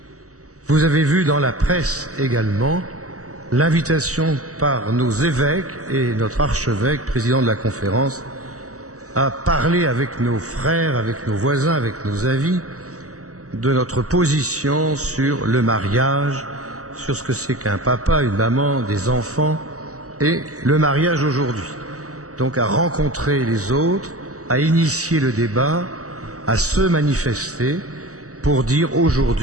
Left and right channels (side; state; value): left; late; 0.66 ms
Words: Vous avez vu dans la presse également l'invitation par nos évêques et notre archevêque, président de la conférence, à parler avec nos frères, avec nos voisins, avec nos amis, de notre position sur le mariage, sur ce que c'est qu'un papa, une maman, des enfants, et le mariage aujourd'hui. Donc à rencontrer les autres, à initier le débat, à se manifester pour dire